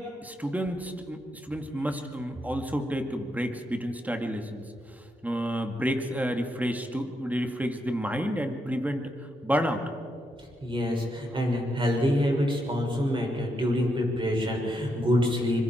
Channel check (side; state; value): both; normal; correlation 0.81